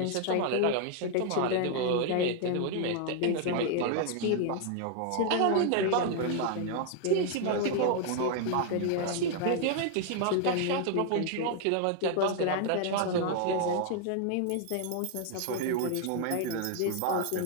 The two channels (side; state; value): both; different; correlation 0.00